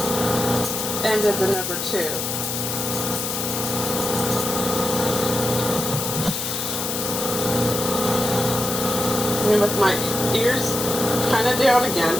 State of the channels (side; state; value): left; noise; hiss, 3 dB below the sound